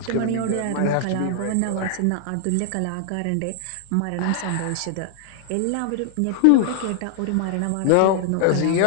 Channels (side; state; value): both; different; correlation -0.01